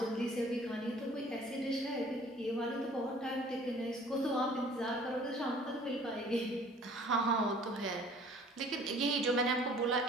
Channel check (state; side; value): normal; both; correlation 0.52